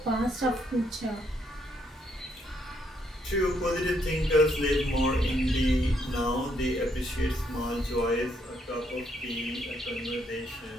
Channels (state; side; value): normal; both; correlation 0.73